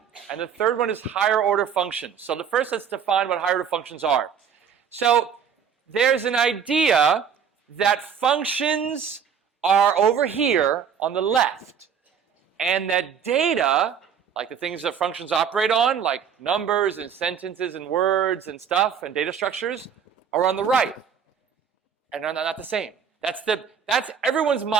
And the third one is higher order functions. So the first, let's define what higher order functions are. So there's an idea that functions are over here on the left, and that data, like the things that functions operate on, like numbers and sentences and words and stuff and data structures, are on the right. And they're not the same. That's everyone's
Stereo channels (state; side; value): quieter; left; 7.5 dB